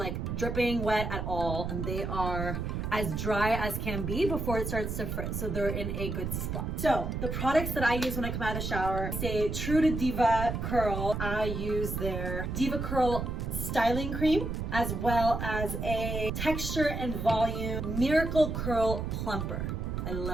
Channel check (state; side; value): noise; right; rumble, 3 dB below the sound